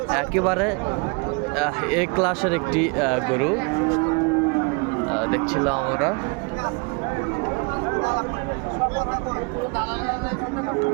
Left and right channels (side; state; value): left; quieter; 31.6 dB